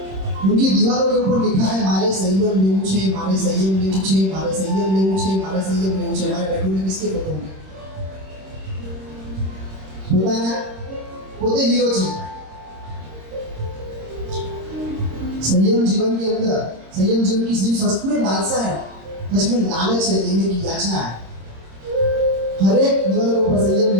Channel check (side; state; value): left; late; 26 ms